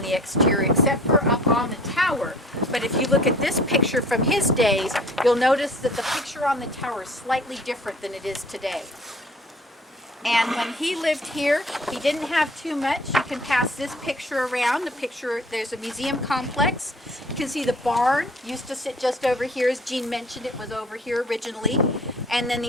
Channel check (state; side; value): normal; both; correlation 0.50